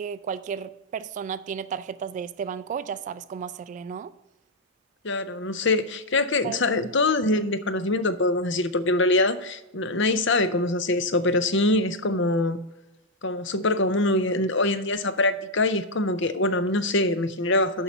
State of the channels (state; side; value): normal; both; correlation -0.01